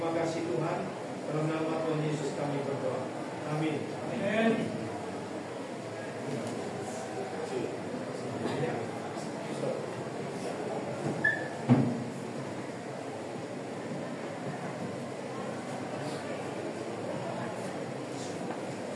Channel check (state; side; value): identical; both; correlation 1.00